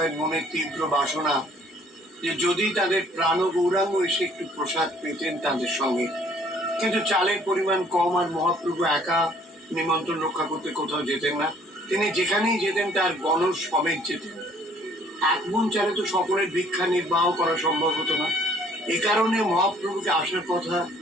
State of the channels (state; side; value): normal; both; correlation 0.59